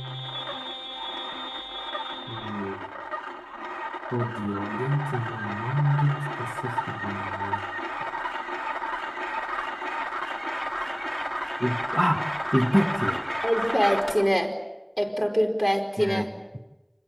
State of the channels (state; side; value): identical; both; correlation 1.00